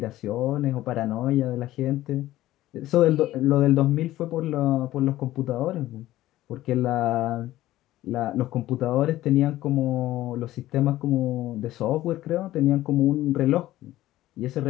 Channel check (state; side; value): quieter; right; 15.2 dB